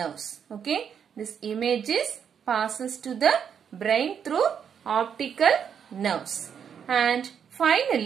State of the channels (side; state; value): left; quieter; 7.7 dB